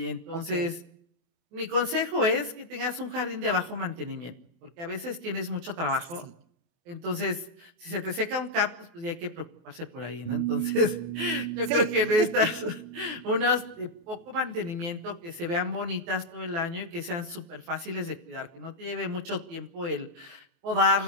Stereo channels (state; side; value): late; left; 23 ms